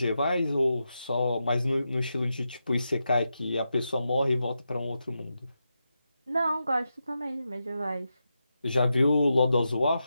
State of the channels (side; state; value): both; inverted; correlation -0.88